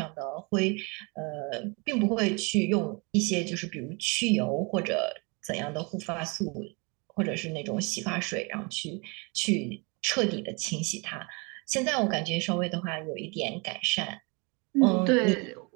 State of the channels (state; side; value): quieter; left; 30.6 dB